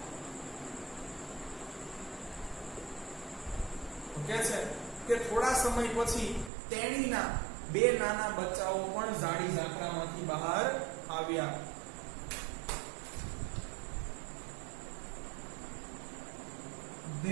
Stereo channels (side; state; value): left; drops out; at 6.5 s